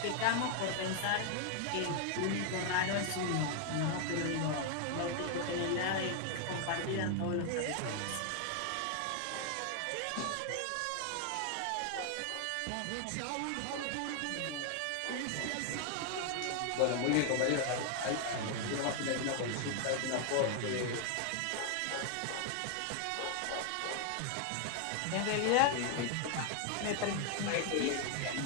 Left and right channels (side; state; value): both; different; correlation 0.00